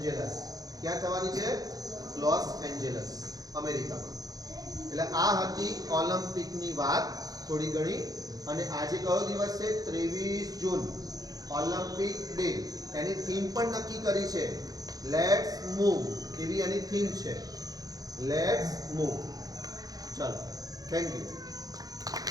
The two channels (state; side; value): late; left; 0.18 ms